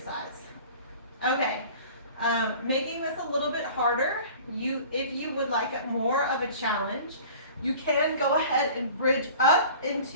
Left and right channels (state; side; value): inverted; both; correlation -0.44